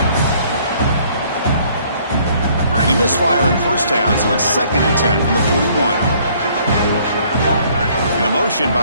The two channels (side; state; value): both; inverted; correlation -0.61